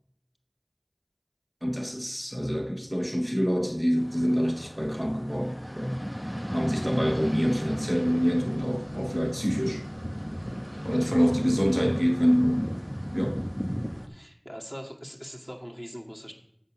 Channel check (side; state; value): both; identical; correlation 1.00